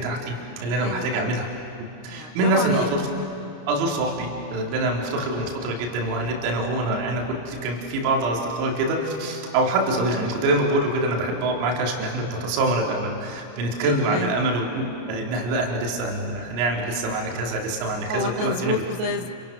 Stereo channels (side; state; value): left; late; 33 ms